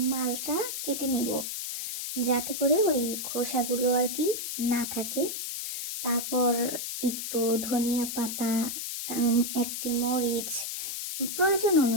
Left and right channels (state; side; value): noise; left; hiss, 5 dB below the sound